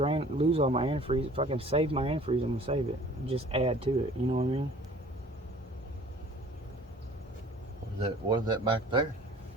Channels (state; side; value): normal; both; correlation 0.49